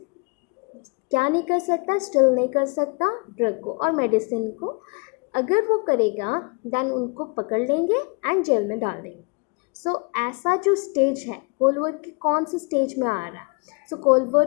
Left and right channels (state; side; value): quieter; right; 33.1 dB